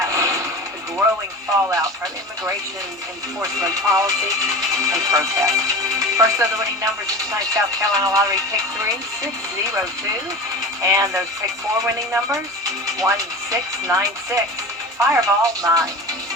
The growing fallout from immigration enforcement policy and protests. First of the winning numbers in tonight's South Carolina Lottery Pick 3, 602. And those Pick 4 winning numbers, 1696. Fireball 9.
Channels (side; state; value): both; normal; correlation 0.32